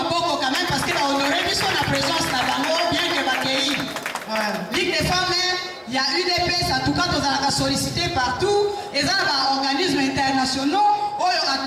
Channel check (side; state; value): both; identical; correlation 1.00